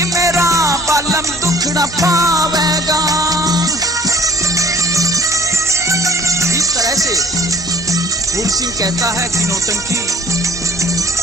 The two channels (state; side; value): normal; both; correlation 0.53